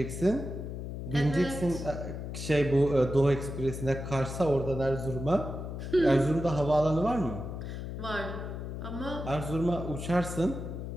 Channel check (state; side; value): noise; left; hum, 7 dB below the sound